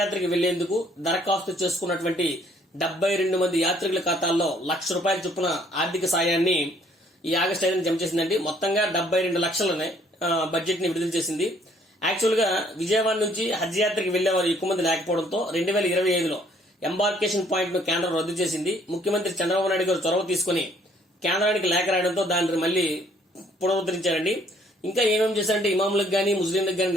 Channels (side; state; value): both; normal; correlation 0.63